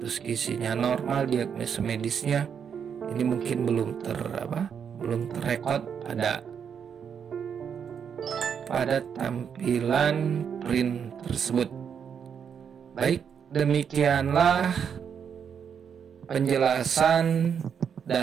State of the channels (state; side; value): quieter; left; 7.4 dB